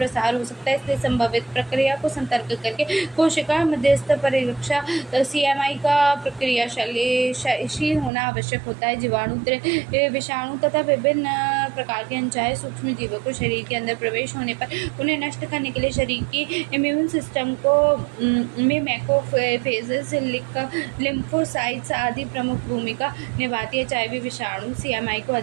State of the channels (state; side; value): drops out; left; at 8.1 s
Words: हो सकता है। इसलिए संभावित प्रक्रिया को सतर्क करके कोशिका मध्यस्थ परिरक्षा CMI का प्रक्रियाशील होना आवश्यक होता है। जीवाणु विषाणु तथा विभिन्न प्रकार के अनचाहे सूक्ष्म जीवों को शरीर के अंदर प्रवेश होने पर उन्हें नष्ट करने के लिए शरीर की इम्यून सिस्टम को में मैक्रोफेजेस, लिम्फोसाइट्स आदि प्रमुख भूमिका निभाती है। HIV विषाणु CMI को